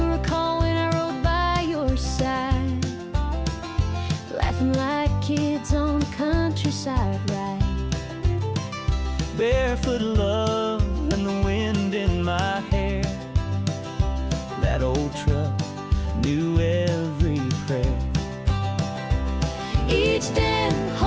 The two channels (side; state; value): both; identical; correlation 1.00